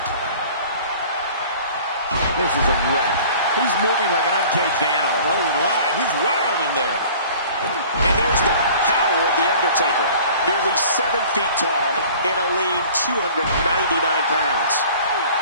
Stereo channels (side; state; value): both; inverted; correlation -0.47